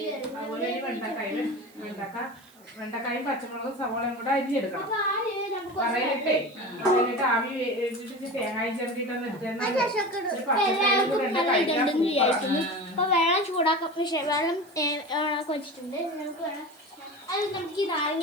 ആൾക്കാർ വെണ്ടക്കായും പച്ചമുളകും സവോളയും കൂടെ അരിഞ്ഞെടുക്കണം. കറയിലിട്ട് ആവി വേവിച്ചിട്ട് തേങ്ങായി ചേർത്തിട്ടൊന്ന് വെള്ളം ചൂടാക്കാൻ വെള്ളം വെച്ചിട്ടുണ്ട്. നമുക്ക് വേണം അത് നമുക്ക് ഈ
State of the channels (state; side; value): noise; right; hiss, 27 dB below the sound